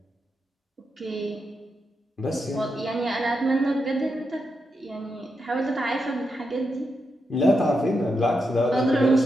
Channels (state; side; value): normal; both; correlation 0.85